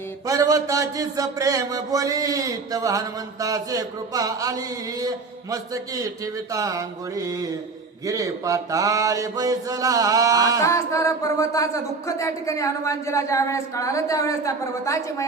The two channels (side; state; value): left; quieter; 4.2 dB